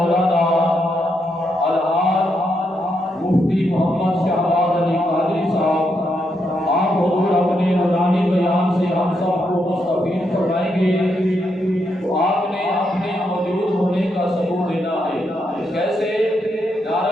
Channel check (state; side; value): normal; both; correlation 0.80